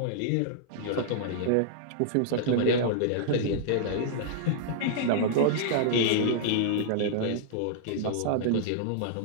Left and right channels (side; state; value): both; different; correlation -0.01